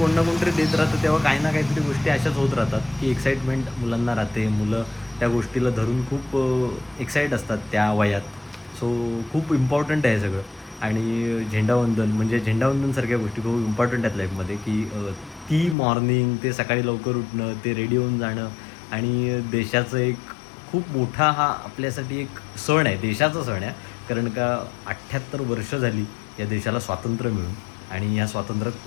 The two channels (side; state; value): right; drops out; at 15.8 s